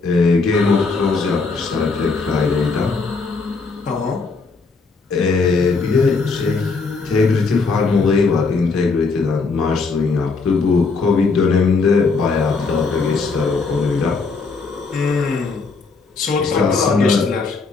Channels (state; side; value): quieter; right; 4.4 dB